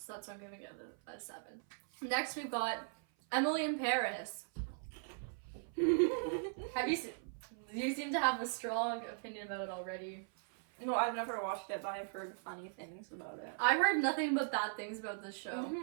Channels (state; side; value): silent; left; 52 dB below the other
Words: that's why I'm giving it a 7. Next, we've got Emily in Paris. Have you seen? You seem to have a strong opinion about it already. No, I've never watched it, but I've heard funny things about it. I've heard nothing but bad things about this show.